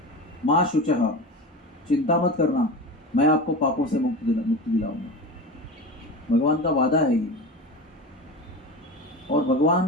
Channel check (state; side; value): normal; both; correlation 0.28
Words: माँ शुचः, चिंता मत करना, मैं आपको पापों से मुक्ति दिलाऊंगा। भगवान का वादा है ये। और